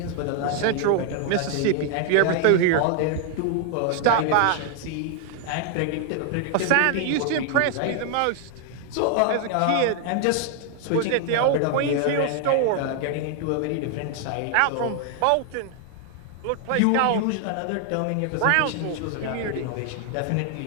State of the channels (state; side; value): different; both; correlation 0.00